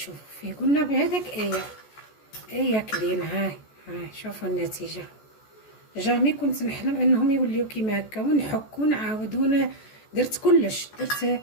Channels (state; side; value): late; right; 14 ms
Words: فيه قلنا بهذاك ايه كلين. هاي شوفوا النتيجه. جامي كنت نحلم انهم يوليو كيما هكا ونحك ونعاود درت كلش. درت